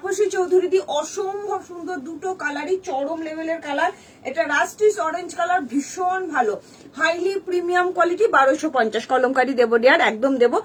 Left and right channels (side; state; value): both; identical; correlation 1.00